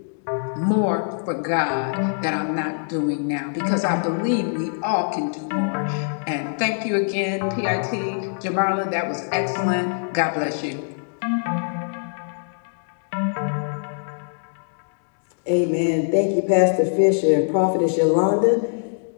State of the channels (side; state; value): right; silent; digital silence